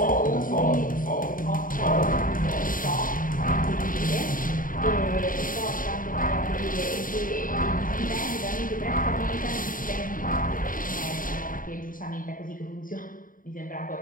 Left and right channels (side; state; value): right; late; 0.40 ms